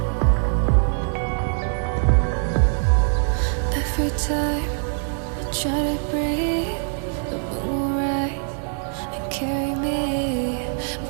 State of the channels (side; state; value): left; silent; 63 dB below the other